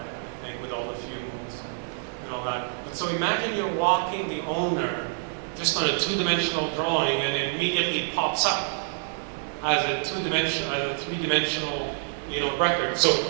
think, with all the fumes and all that. But so imagine you're walking the owner just on a two-dimensional drawing, and it immediately pops up as a three-dimensional, record. So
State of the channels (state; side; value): silent; left; digital silence